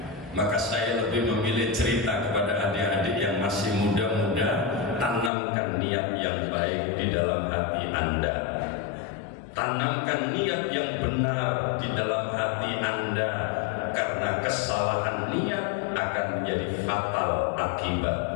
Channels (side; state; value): right; drops out; at 5.3 s